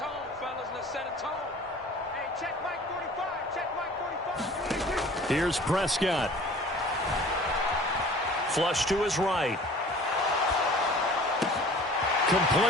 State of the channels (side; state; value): both; normal; correlation 0.46